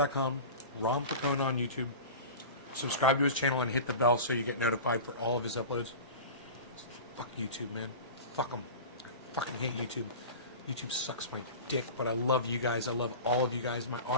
Ron Placone on YouTube. Subscribe to his channel and hit the bell so you get notified for all of his uploads. Fuck YouTube, man. Fuck them. I fucking hate YouTube. YouTube sucks my dick, but I love you guys. I love all of you guys. My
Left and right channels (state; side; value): inverted; both; correlation -0.33